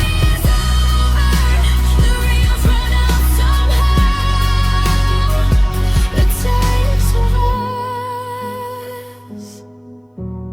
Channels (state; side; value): identical; both; correlation 1.00